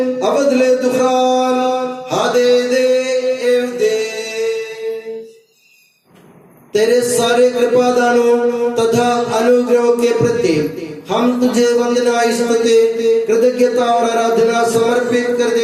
Avadle dukhan Hade de evde तेरे सारे कृपादानों तथा अनुग्रह के प्रति हम तुझे वंदना स्तुति कृतज्ञता और आराधना समर्पित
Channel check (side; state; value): both; identical; correlation 1.00